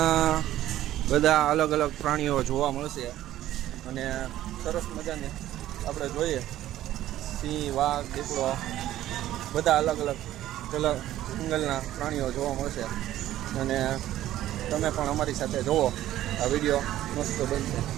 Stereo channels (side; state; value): left; quieter; 13.5 dB